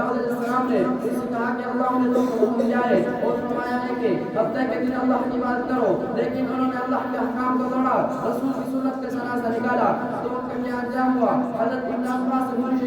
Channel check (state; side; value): identical; both; correlation 1.00